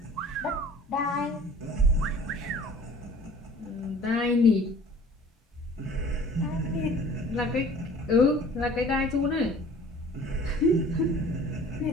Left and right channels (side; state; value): both; normal; correlation 0.48